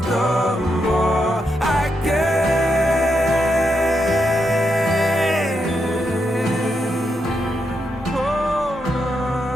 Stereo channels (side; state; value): both; normal; correlation 0.82